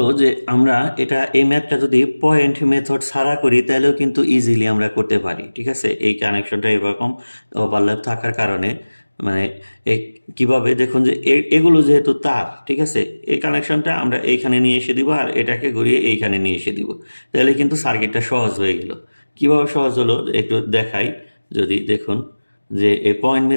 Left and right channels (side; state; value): both; inverted; correlation -1.00